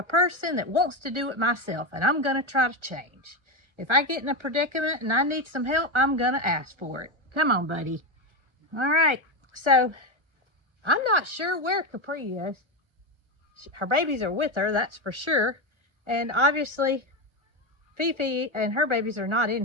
person that wants to do it myself, and I'm going to try to change. If I get in a predicament and I need some help, I'm going to ask for it. Come on, buddy. All right, so I'm not sure where Capri is. Her babies are with her, that's for sure. And obviously, Fifi and her babies are not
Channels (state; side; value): late; left; 1.3 ms